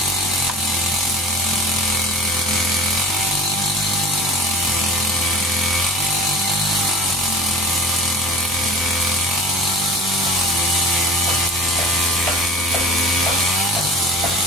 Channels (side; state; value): both; normal; correlation 0.39